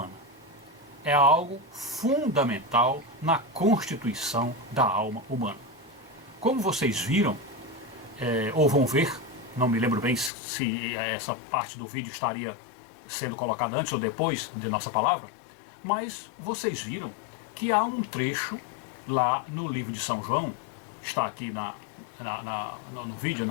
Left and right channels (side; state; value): right; drops out; at 10.3 s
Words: É algo fundamental na constituição da alma humana. Como vocês viram, ou vão ver, não me lembro bem se essa parte do vídeo estaria sendo colocada antes ou depois de nossa palavra, mas vocês viram que há um trecho lá no livro de São João, está aqui no vídeo,